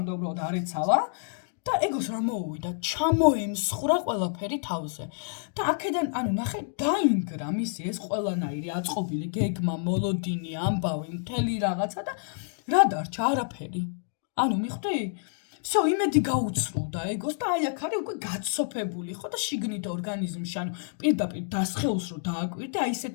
უბრალოდ არ ეცალა და ეგოს რა მოუვიდა, ჩამოემსხვრა ყველაფერი თავზე. და აქედან, ნახე, დაინგრა მისი ეს ყველანაირი აწყობილი გეგმა, მოლოდინი, ამბავი, მთელი რაღაცა და რა დარჩა? არაფერი. მიხვდი? всё, იმედი გაუცრულდა ეგოს და აქ არის უკვე გაცოფებული, ხო და შიგნით ორგანიზმში, პირდაპირ დასხეულს რო დააკვირდე,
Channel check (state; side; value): silent; right; digital silence